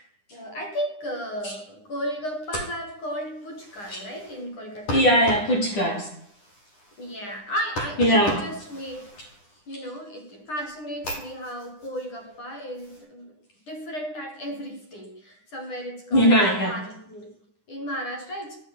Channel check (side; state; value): right; late; 9.9 ms